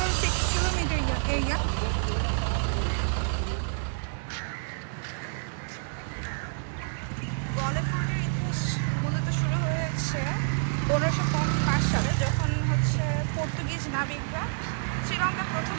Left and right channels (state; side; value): silent; left; digital silence